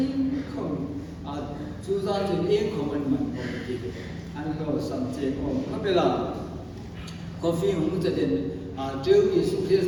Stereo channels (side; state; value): both; identical; correlation 1.00